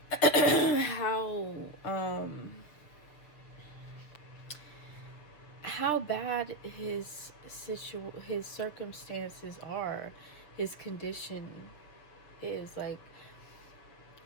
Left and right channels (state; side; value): late; right; 6.5 ms